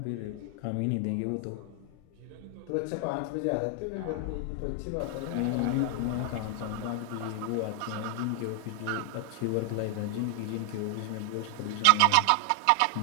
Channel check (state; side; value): different; both; correlation 0.00